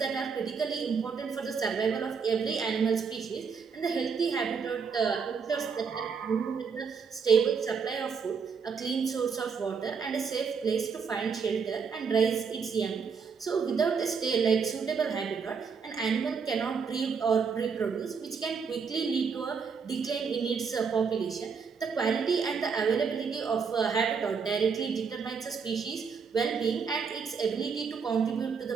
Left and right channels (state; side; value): quieter; left; 5.8 dB